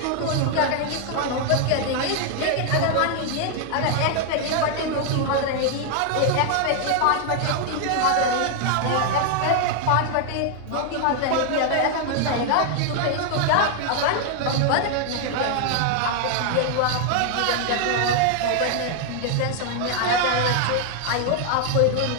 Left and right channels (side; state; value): both; different; correlation 0.00